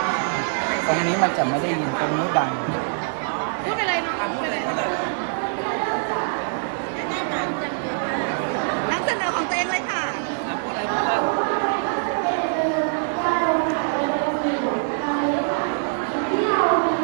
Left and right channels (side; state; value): left; silent; 63 dB below the other